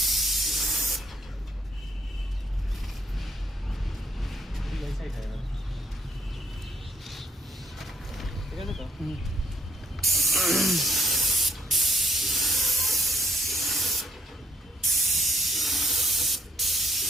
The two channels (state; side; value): normal; both; correlation 0.67